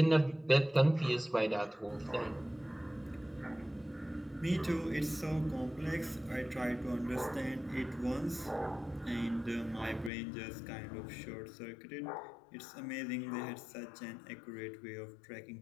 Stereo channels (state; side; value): drops out; right; at 10.1 s